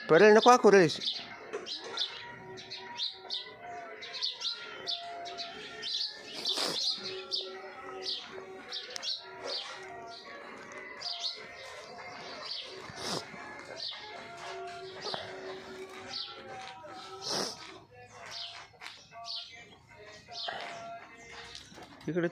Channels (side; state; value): both; identical; correlation 1.00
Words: पर्याय नको करूस. इकडे